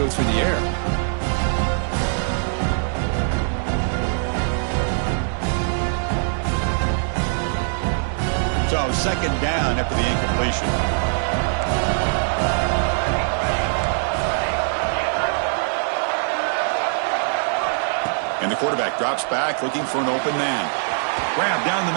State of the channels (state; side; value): silent; left; digital silence